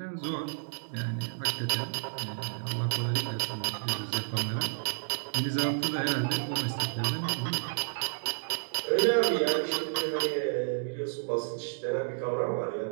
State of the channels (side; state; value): left; silent; digital silence